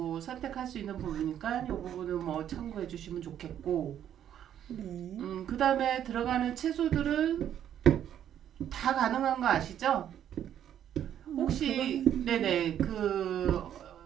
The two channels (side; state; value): left; quieter; 10.2 dB